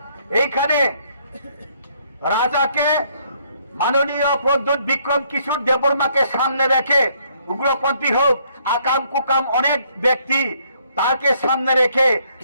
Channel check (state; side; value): inverted; both; correlation -0.68